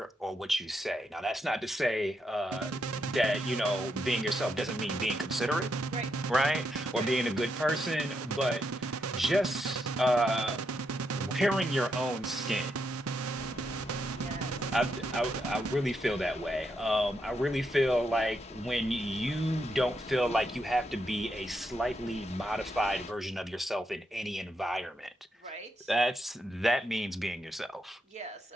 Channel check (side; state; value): both; normal; correlation 0.80